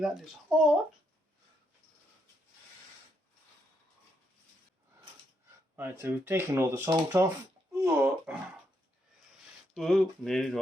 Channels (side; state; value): both; normal; correlation 0.78